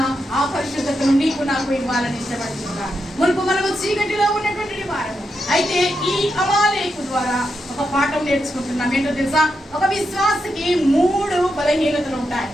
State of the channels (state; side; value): normal; both; correlation 0.85